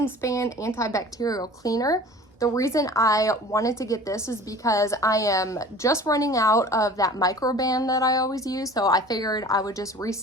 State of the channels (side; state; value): both; normal; correlation 0.43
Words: Span antibacterial cleaner. The reason I wanted to get this is because I am just running out of that microban that I always use, so I figured I would just